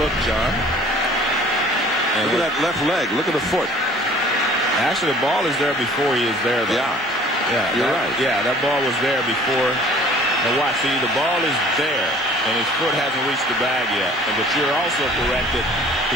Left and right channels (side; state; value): both; normal; correlation 0.51